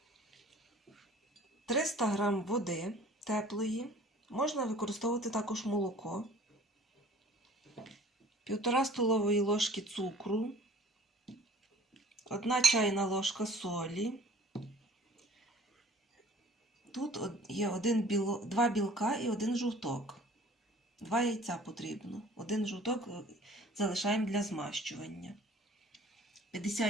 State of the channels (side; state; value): both; normal; correlation 0.50